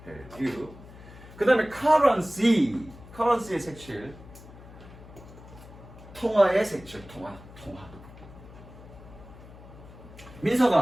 해류. 그 다음에 currency의 색칠. 통화의 색칠. 통화.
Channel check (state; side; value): noise; left; hum, 18 dB below the sound